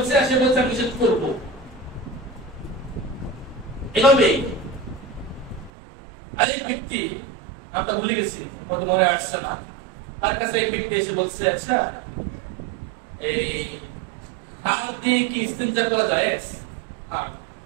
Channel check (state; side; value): drops out; left; at 5.7 s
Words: সে বলছে আমি নিষেধ করবো। এভাবে আরেক ব্যক্তি, আমরা ভুলে গেছি, মনে আসছে না, তার কাছে এক ব্যক্তি এসে বলছে আচ্ছা এই হাড় দিয়ে কি ইস্তেঞ্জা করা যায়?